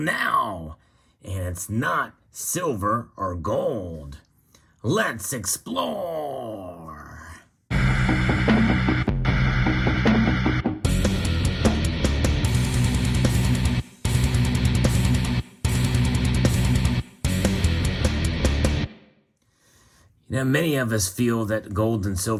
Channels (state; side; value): identical; both; correlation 1.00